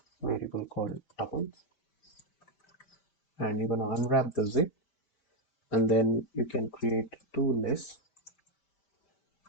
variable called tuples, and you're gonna unwrap the zip, and then you can create two lists.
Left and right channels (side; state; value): right; late; 5.1 ms